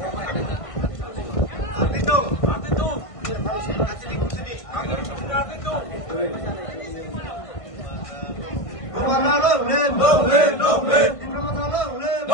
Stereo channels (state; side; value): late; right; 1.5 ms